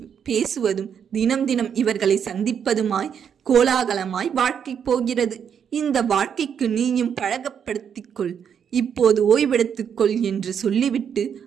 பேசுவதும், தினம் தினம் இவர்களை சந்திப்பதுமாய் கோலாகலமாய் வாழ்க்கை போகிறது. இந்த வாழ்க்கைக்கு நீயும் பழகப்படுத்திக்கொள், இப்போது ஓய்வெடுத்துக்கொள் என்று சொல்லிவிட்டு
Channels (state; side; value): quieter; left; 7.8 dB